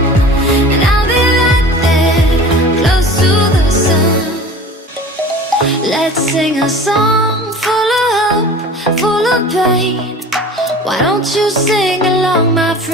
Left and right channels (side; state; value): both; normal; correlation 0.40